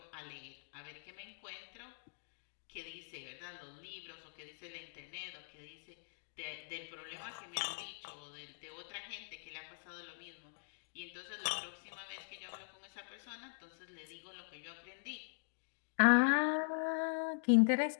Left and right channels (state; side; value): silent; right; digital silence